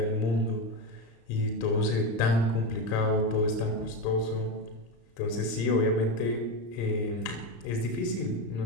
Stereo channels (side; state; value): right; late; 35 ms